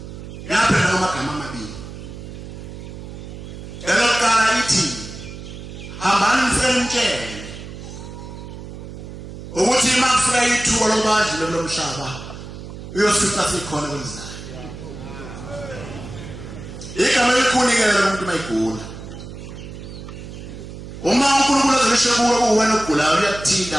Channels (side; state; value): right; noise; hum, 12 dB below the sound